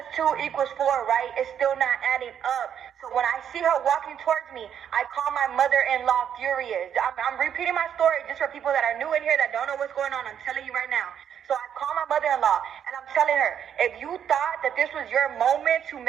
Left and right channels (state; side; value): quieter; left; 8.9 dB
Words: 2 equals 4, right? It's still not adding up. So when I see her walking towards me, I call my mother-in-law furious. I'm repeating my story just for people that are new in here that don't know what's going on. I'm telling you right now. So I call my mother-in-law and I'm telling her, if you thought that this was your moment to